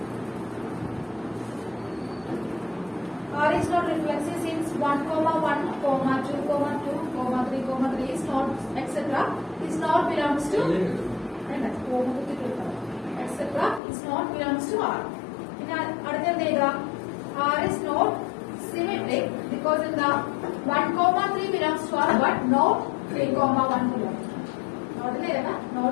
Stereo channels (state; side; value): drops out; right; at 13.8 s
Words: R is not reflexive since 1,1, 2,2, 3,3 is not etc. is not belongs to etc. is not belongs to R. പിന്നെ അടുത്ത എന്ത് ചെയ്യുക? R is not symmetric because in the 1,3 belongs to R but not 3,1 belongs to R. Not there, not